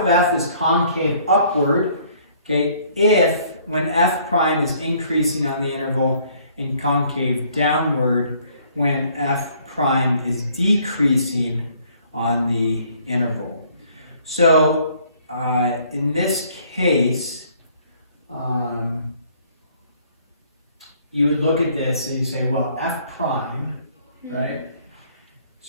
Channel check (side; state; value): both; inverted; correlation -0.61